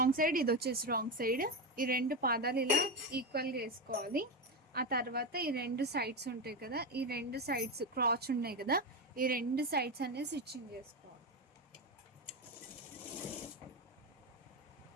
సైడ్, ఇది వచ్చేసి రాంగ్ సైడ్. ఈ రెండు పాదాలు ఇలా ఈక్వల్గా వేసుకోవాలి. ఆ తర్వాత ఈ రెండు సైడ్స్ ఉంటాయి కదా, ఈ రెండు సైడ్స్ క్రాచ్ ఉన్నాయి కదా, ఈ రెండు సైడ్స్ అనేది స్టిచ్చింగ్ చేసుకోవాలి.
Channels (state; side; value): normal; both; correlation 0.13